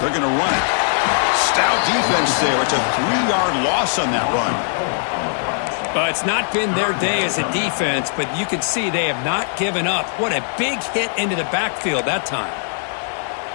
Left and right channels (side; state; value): right; silent; digital silence